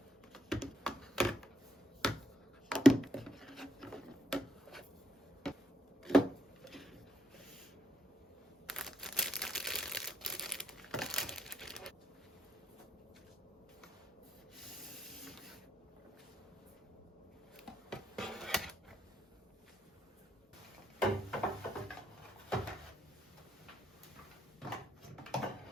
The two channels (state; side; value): normal; both; correlation 0.76